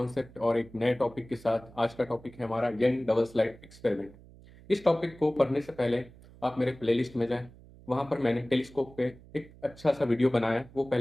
और एक नए टॉपिक के साथ। आज का टॉपिक है हमारा यंग डबल स्लाइड एक्सपेरिमेंट। इस टॉपिक को पढ़ने से पहले आप मेरे प्लेलिस्ट में जाएं। वहाँ पर मैंने टेलीस्कोप पे एक अच्छा सा वीडियो बनाया है, वो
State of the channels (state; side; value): noise; right; hum, 22 dB below the sound